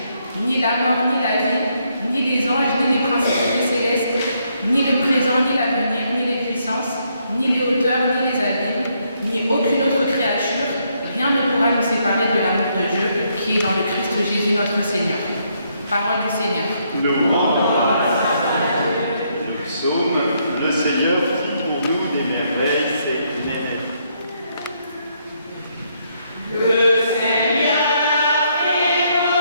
Ni la mort, ni la vie, ni les anges, ni les principautés célestes, ni le présent, ni l'avenir, ni les puissances, ni les hauteurs, ni les abîmes, ni aucune autre créature, rien ne pourra nous séparer de l'amour de Dieu qui est dans le Christ Jésus notre Seigneur. Parole du Seigneur. Nous psaume, le Seigneur fit pour nous des merveilles, c'est une merveille. Le Seigneur fit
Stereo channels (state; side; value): inverted; both; correlation -0.74